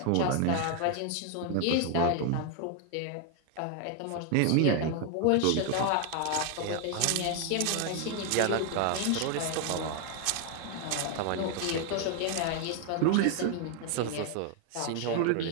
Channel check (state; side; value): different; both; correlation 0.01